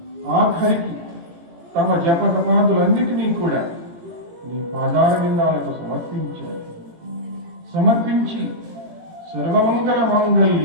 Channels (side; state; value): left; late; 18 ms